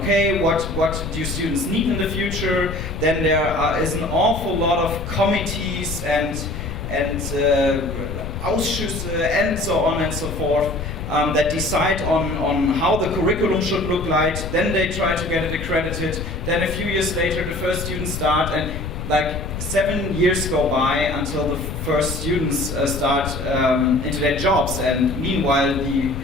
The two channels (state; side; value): noise; left; rumble, 6 dB below the sound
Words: okay, what do students need in the future? Then there is an awful lot of committees and Ausschüsse and so on and so forth. That decide on how the curriculum should look like. Then they try to get it accredited. Then a few years later, the first students start, and 7 years go by until the first students start into their jobs. And meanwhile, the